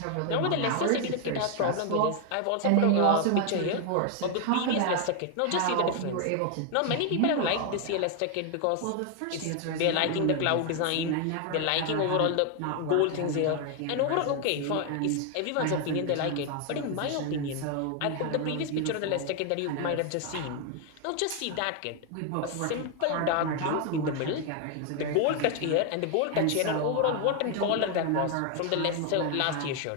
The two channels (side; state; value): both; different; correlation 0.00